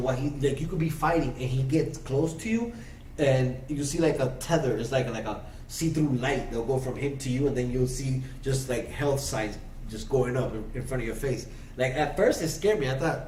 what he like you could be fighting, and he gets close to you, and you see like a tether. It's like a see through light. They'll go from him to you, and then you'll see just like health signs just going up in front of your face. Like at first, it scared me. I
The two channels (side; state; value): both; identical; correlation 1.00